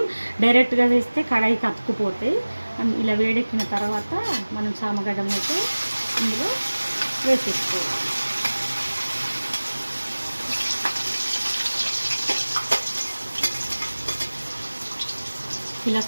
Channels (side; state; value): both; inverted; correlation -1.00